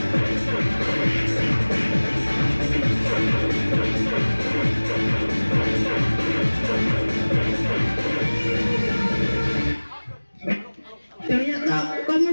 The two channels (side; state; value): both; inverted; correlation -1.00